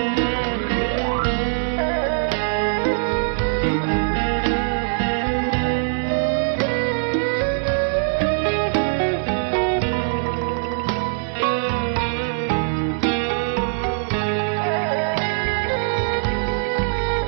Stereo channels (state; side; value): silent; left; digital silence